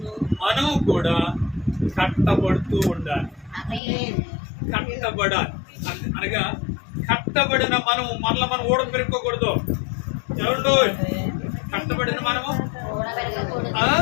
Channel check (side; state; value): right; drops out; at 3.8 s